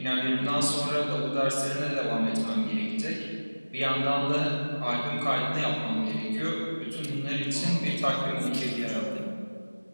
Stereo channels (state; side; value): inverted; both; correlation -1.00